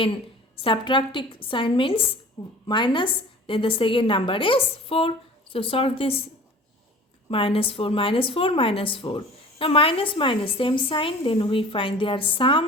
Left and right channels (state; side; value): normal; both; correlation 0.43